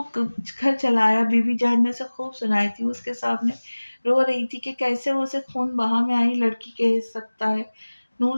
घर चला आया। बीबी जान ने उसे खूब सुनाई थी। उसके सामने रो रही थी कि कैसे वो उसे खून बहा में आई लड़की कह सकता है।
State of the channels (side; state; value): both; inverted; correlation -1.00